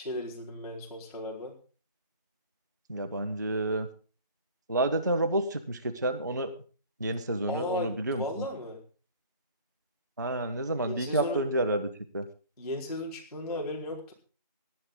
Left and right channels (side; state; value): both; inverted; correlation -0.45